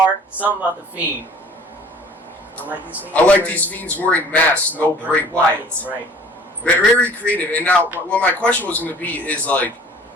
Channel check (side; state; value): both; normal; correlation 0.51